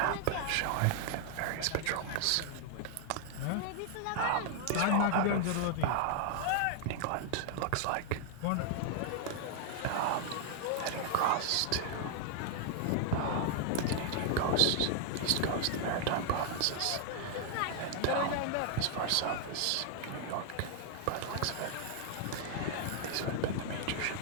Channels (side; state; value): both; different; correlation 0.00